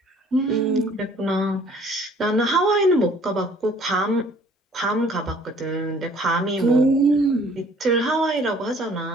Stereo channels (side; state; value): both; normal; correlation 0.56